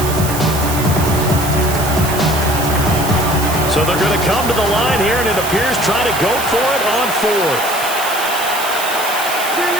So they're going to come to the line here, and it appears trying to go for it on fourth.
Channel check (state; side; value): noise; right; hiss, 7 dB below the sound